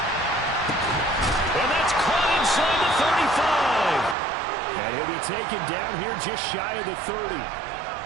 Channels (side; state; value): left; drops out; at 4.2 s